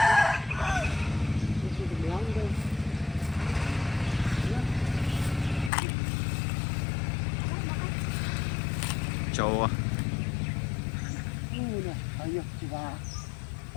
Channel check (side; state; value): right; drops out; at 5.7 s